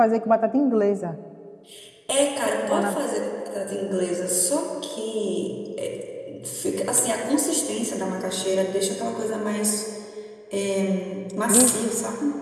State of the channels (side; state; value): both; identical; correlation 1.00